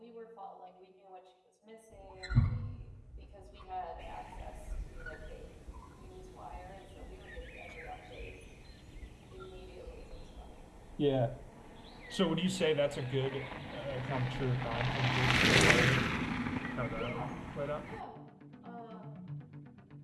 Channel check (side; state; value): both; identical; correlation 1.00